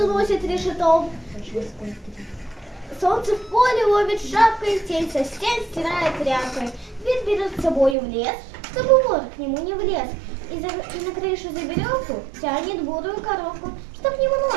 носит решетом. Солнце в поле ловит шапкой, тень со стен стирает тряпкой. Дверь берет с собой в лес, чтобы вор к нему не влез. И на крышу за веревку тянет бурую коровку, чтоб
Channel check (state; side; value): drops out; left; at 8.0 s